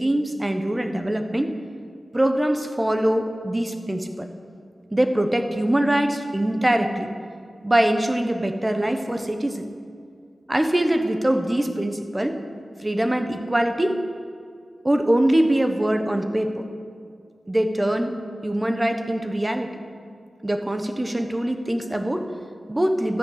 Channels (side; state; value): both; normal; correlation 0.98